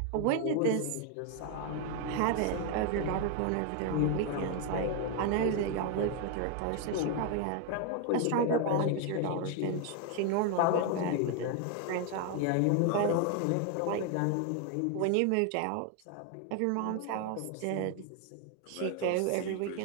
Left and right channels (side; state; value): both; different; correlation 0.01